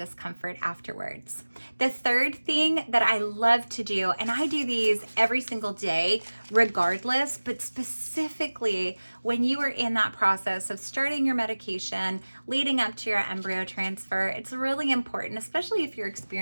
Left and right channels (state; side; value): inverted; both; correlation -1.00